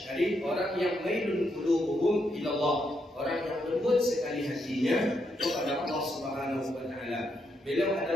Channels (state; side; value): normal; both; correlation 0.79